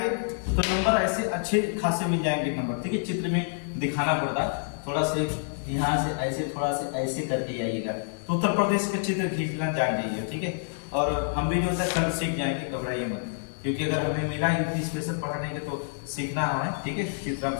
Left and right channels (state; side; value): silent; right; digital silence